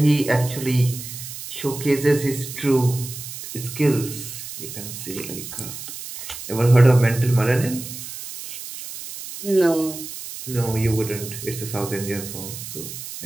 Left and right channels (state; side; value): noise; right; hiss, 10 dB below the sound